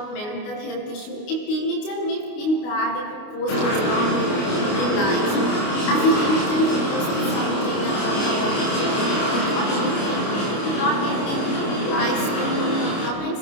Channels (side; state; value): right; late; 29 ms